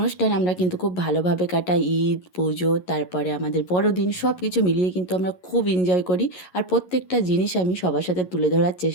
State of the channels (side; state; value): right; late; 11 ms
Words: আমরা কিন্তু খুব ভালোভাবে কাটাই, ঈদ, পুজো, তারপরে আমাদের বড়দিন, সব কিছু মিলিয়ে কিন্তু আমরা খুব এনজয় করি। আর প্রত্যেকটা জিনিস আমি সবার সাথে তুলে ধরার